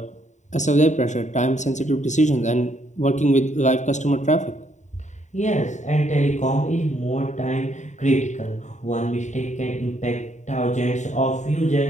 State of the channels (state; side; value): late; right; 0.34 ms